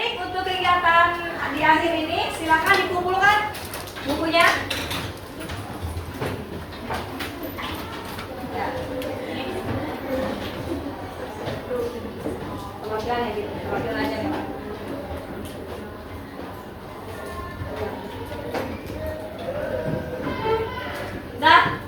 untuk kegiatan di akhir ini silakan dikumpulkan bukunya. Ya. Perwakilan ya gitu, perwakilan aja ya. Nah,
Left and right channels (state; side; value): identical; both; correlation 1.00